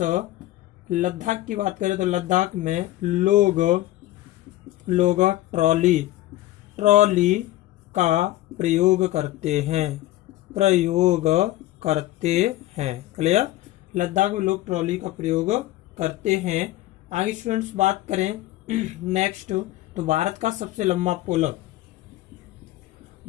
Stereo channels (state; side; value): quieter; right; 15.7 dB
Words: लद्दाख की बात करें तो लद्दाख में लोग ट्रॉली का प्रयोग करते हैं। क्लियर। लद्दाख में लोग ट्रॉली का प्रयोग करते हैं। आगे स्टूडेंट्स बात करें नेक्स्ट तो भारत का सबसे लंबा पुल।